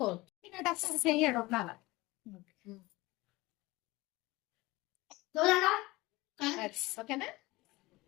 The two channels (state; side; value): quieter; right; 21.0 dB